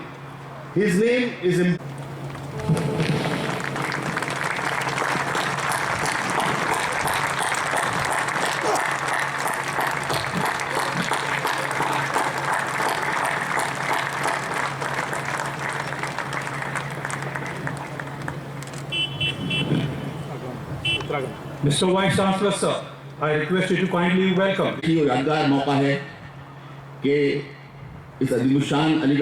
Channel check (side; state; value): both; identical; correlation 1.00